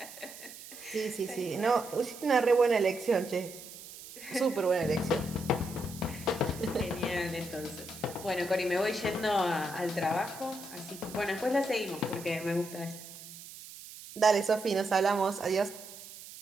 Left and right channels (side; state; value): right; noise; hiss, 15 dB below the sound